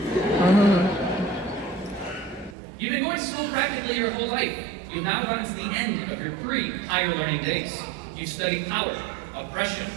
You've been going to school practically your whole life. You've now gotten to the end of your pre-higher learning days. You've studied power, oppression,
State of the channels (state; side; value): drops out; left; at 2.6 s